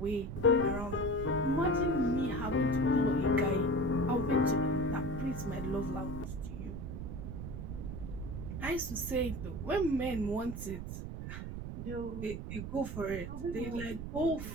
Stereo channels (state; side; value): noise; right; rumble, 7 dB below the sound